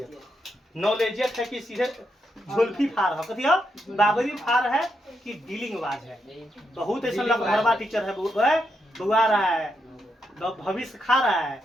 नॉलेजियत है कि सीधे झुल्फी फार है, कथी है बाबरी फार है कि डीलिंग बाज है। बहुत ऐसा लगभगवा टीचर है, बुआ रहा है, भविष्य खा रहा है,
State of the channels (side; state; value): both; normal; correlation 0.82